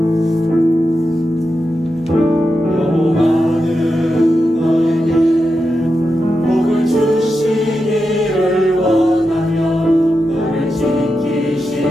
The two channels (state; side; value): normal; both; correlation 0.88